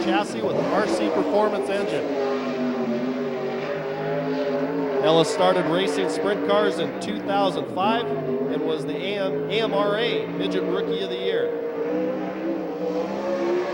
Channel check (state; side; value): identical; both; correlation 1.00